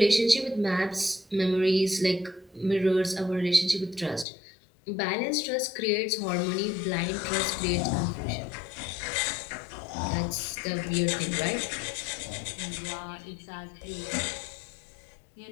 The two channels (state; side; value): drops out; right; at 4.2 s